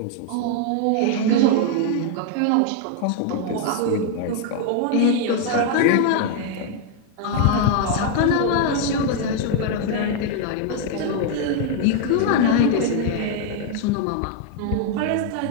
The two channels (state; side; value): different; both; correlation 0.00